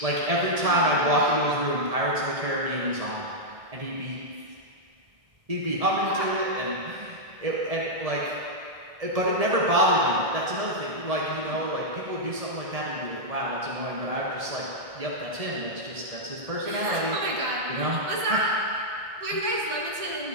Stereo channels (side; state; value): left; late; 1.6 ms